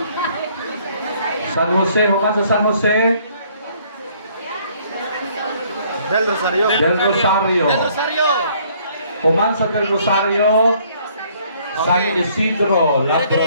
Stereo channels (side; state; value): both; inverted; correlation -0.62